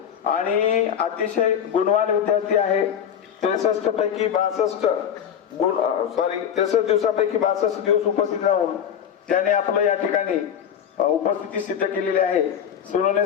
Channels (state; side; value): quieter; right; 8.7 dB